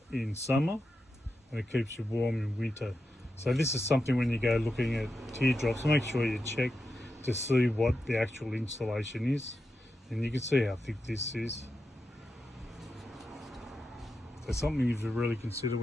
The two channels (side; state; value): both; normal; correlation 0.88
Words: in summer, and it keeps you warm in winter. So this is something when you go looking at teardrops, make sure you check to see what the actual installation is, and you can see how thick this is. So something you have to really consider